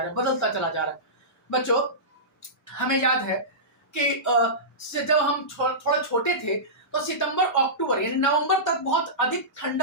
रहा है, बदलता चला जा रहा है। बच्चों, हमें याद है कि जब हम थोड़ा छोटे थे, तो सितंबर अक्टूबर यानी नवंबर तक बहुत अधिक ठंड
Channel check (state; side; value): normal; both; correlation -0.19